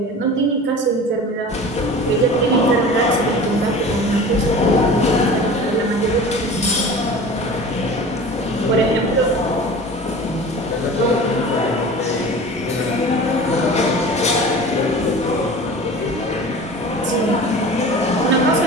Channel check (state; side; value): normal; both; correlation 0.38